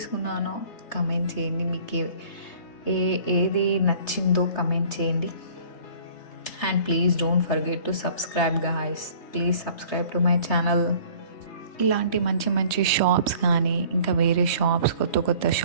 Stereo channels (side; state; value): right; late; 3.3 ms